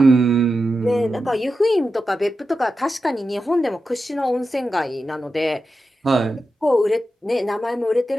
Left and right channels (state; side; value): normal; both; correlation 0.90